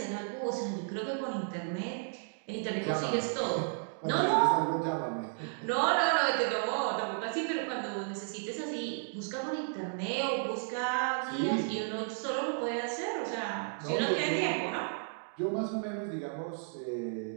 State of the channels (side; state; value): left; silent; digital silence